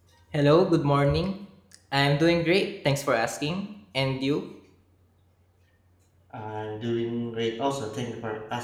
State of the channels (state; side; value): identical; both; correlation 1.00